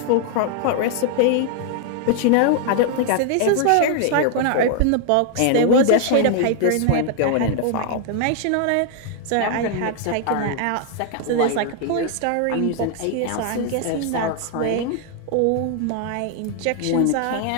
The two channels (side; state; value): both; different; correlation 0.00